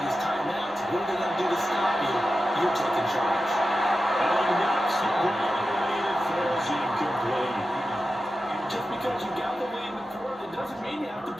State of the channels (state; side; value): normal; both; correlation 0.92